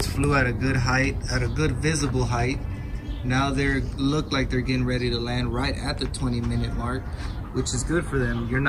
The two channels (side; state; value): both; identical; correlation 1.00